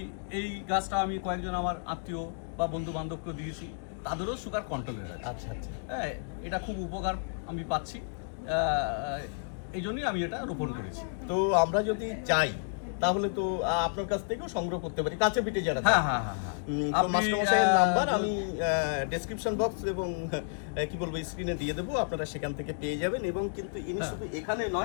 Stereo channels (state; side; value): silent; right; digital silence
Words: এই গাছটা আমি কয়েকজন আমার আত্মীয় বা বন্ধু বান্ধবকে দিয়েছি, তাদেরও সুগার কন্ট্রোলে আছে। আচ্ছা আচ্ছা, হ্যাঁ, এটা খুব উপকার আমি পাচ্ছি, এই জন্যই আমি এটা রোপণ করেছি। তো আমরা যদি চাই তাহলে তো আপনার কাছ থেকেও সংগ্রহ করতে পারি, কাছে পিঠে যারা। হ্যাঁ হ্যাঁ হ্যাঁ হ্যাঁ, তো মাস্টারমশাইয়ের নাম্বার আমি ডেসক্রিপশন বক্স এবং কি বলবো স্ক্রিনে দিয়ে দেবো, আপনারা সেখান থেকে পেয়ে যাবেন। এবং কিন্তু ইনি শুধু এখানে